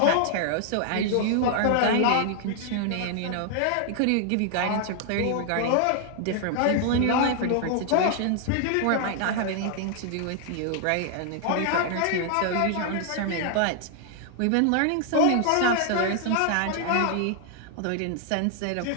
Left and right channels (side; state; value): both; different; correlation 0.00